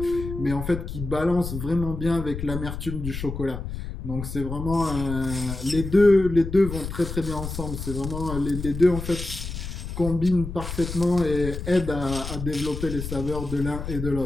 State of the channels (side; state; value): left; noise; rumble, 7 dB below the sound